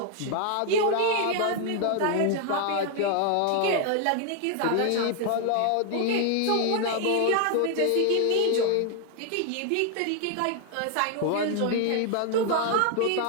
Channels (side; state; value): both; different; correlation 0.00